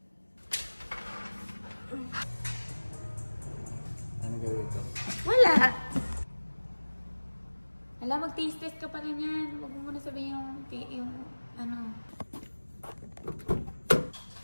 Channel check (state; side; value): inverted; both; correlation -1.00